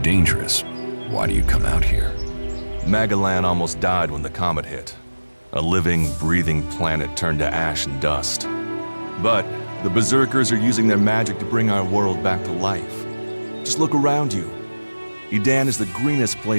why do you come out here? Magalan almost died when the comet hit. A living, breathing planet turned to ash and dust. But the Berserkers are using their magic to bring our world back to life. Just look around you. Edan is the greenest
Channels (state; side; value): inverted; both; correlation -1.00